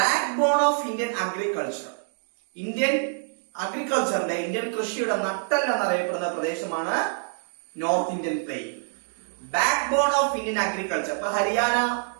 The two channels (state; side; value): silent; left; digital silence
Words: Backbone of Indian agriculture. Indian അഗ്രികൾച്ചറിന്റെ, ഇന്ത്യൻ കൃഷിയുടെ നട്ടെല്ല് എന്നറിയപ്പെടുന്ന പ്രദേശമാണ് north Indian plain. Backbone of Indian agriculture. ഇപ്പൊ ഹരിയാന,